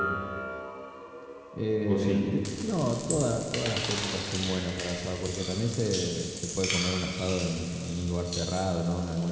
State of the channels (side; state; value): both; identical; correlation 1.00